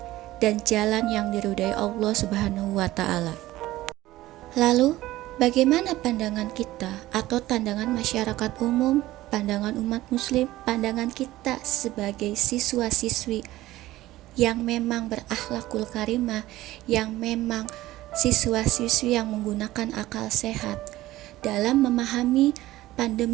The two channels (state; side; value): quieter; left; 16.4 dB